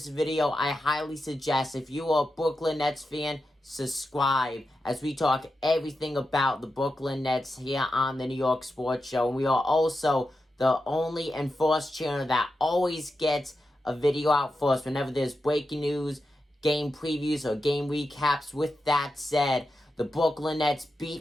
video, I highly suggest if you are a Brooklyn Nets fan, subscribe as we talk everything about the Brooklyn Nets here on the New York Sports Show. And we are also the only and first channel that always gets a video out for us whenever there's breaking news, game previews, or game recaps. With that said, the Brooklyn Nets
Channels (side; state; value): both; normal; correlation 0.89